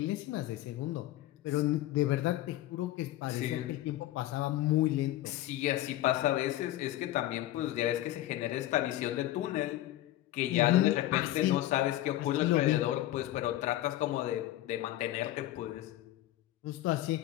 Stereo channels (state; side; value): quieter; right; 14.8 dB